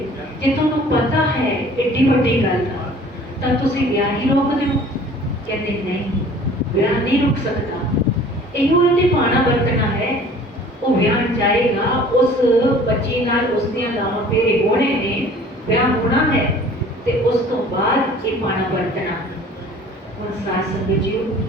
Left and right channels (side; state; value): both; normal; correlation 0.49